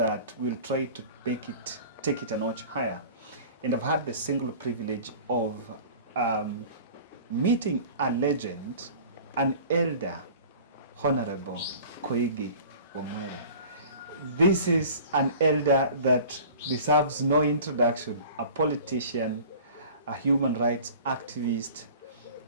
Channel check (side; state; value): both; inverted; correlation -0.43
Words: we'll try to take it a notch higher. And I've had the single privilege of meeting a legend, an elder, Honorable Koigi Wamwere. This is an elder that deserves no introduction, a politician, a human rights activist,